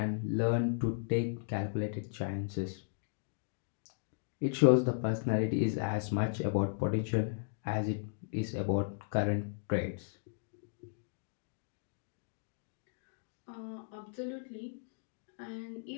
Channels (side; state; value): right; silent; digital silence